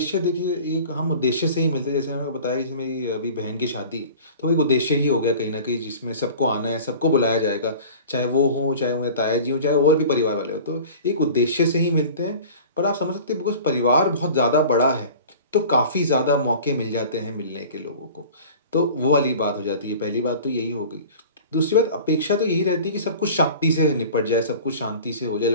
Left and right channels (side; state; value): both; inverted; correlation -0.41